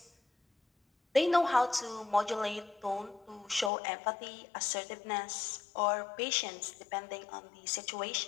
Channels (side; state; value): right; drops out; at 3.7 s